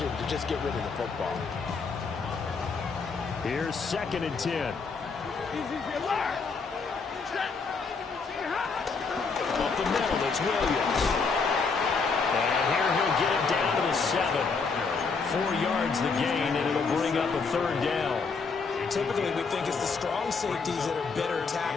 to just get rid of the football. Here's 2nd and 10. Up the middle, it's Williams. And here he'll get it down to the 7. 4 yards the gain, and it'll bring up a third down. Typically, we think it's the strong safeties that are better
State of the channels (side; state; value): right; quieter; 4.8 dB